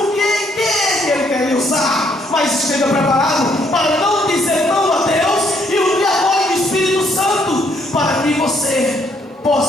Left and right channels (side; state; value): both; normal; correlation 0.70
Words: que Ele quer lhe usar. Mas esteja preparado para não dizer não a Deus e o apoio do Espírito Santo, para que você